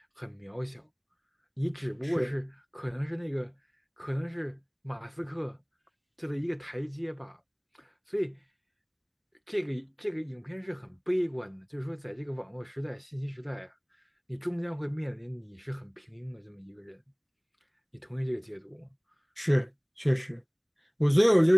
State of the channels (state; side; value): identical; both; correlation 1.00